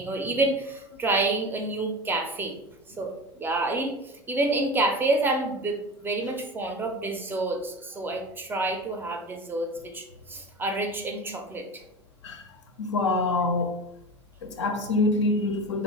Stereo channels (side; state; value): both; normal; correlation 0.30